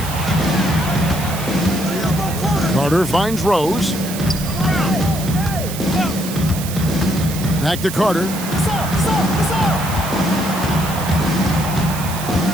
Carter finds Rose. Back to Carter.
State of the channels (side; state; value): right; noise; hiss, 10 dB below the sound